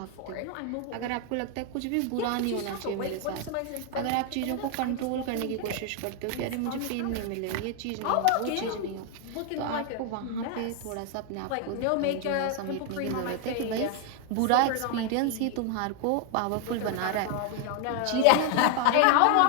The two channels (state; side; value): different; both; correlation 0.00